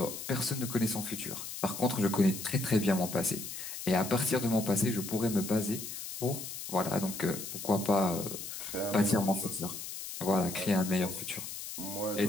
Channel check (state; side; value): noise; left; hiss, 8 dB below the sound